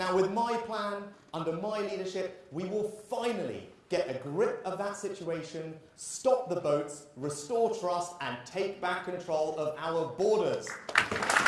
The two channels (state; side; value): identical; both; correlation 1.00